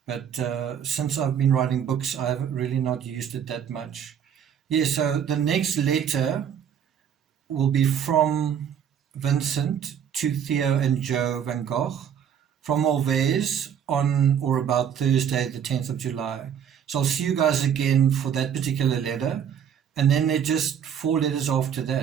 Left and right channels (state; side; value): quieter; left; 8.6 dB